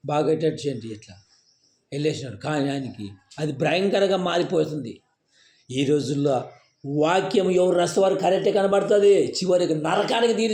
బాగా చేయండి ఇట్లా వెళ్ళేసినాడు. కానీ ఆయనకి అది భయంకరంగా మారిపోతుంది. ఈ రోజుల్లో వాక్యం ఎవరు రసవారు కరెక్టే కనబడుతుంది, చివరికి నరకానికి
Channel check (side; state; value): both; identical; correlation 1.00